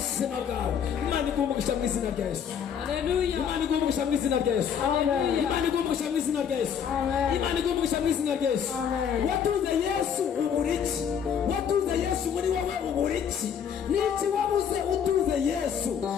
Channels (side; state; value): right; quieter; 7.9 dB